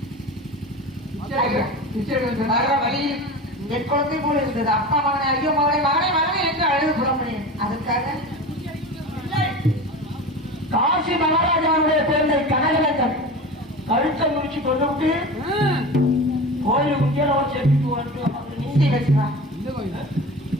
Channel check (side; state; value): both; normal; correlation 0.31